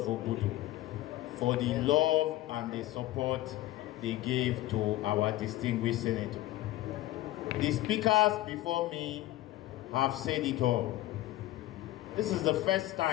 Obudu for the love and the support they gave to our distinguished senator. The speakers before me have said it all. This is the first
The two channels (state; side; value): quieter; right; 16.2 dB